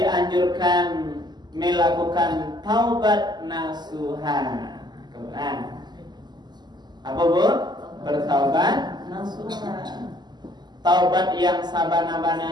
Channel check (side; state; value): left; late; 0.21 ms